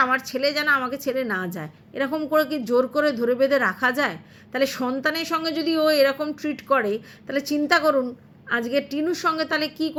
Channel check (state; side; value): identical; both; correlation 1.00